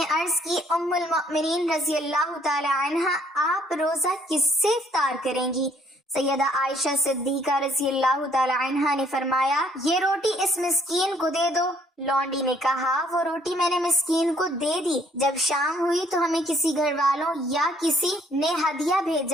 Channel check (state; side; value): normal; both; correlation 0.64